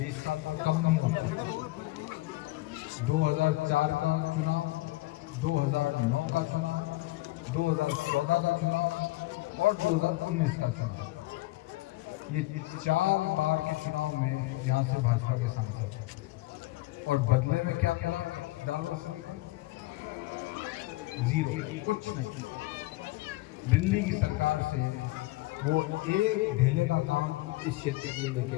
साल को कम नहीं होता। 2004 का चुनाव, 2009 का चुनाव, 2014 का चुनाव और 2019 का चुनाव, ये 4 बार के चुनाव में यहाँ से भाजपा के सांसद हैं। और बदले में क्या मिला जालौर सुरई को? जीरो, कुछ नहीं। दिल्ली की सरकार से वो एक ढेले का काम इस क्षेत्र के लिए लेके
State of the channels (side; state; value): right; quieter; 19.4 dB